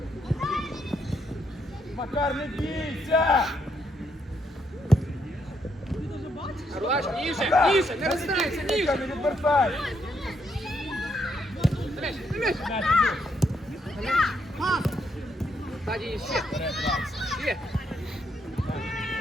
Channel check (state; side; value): normal; both; correlation 0.76